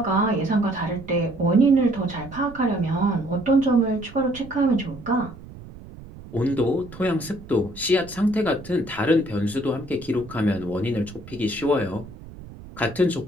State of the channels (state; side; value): noise; right; rumble, 16 dB below the sound